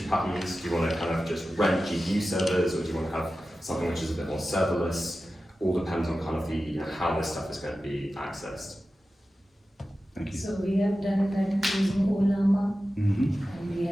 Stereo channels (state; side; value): normal; both; correlation 0.94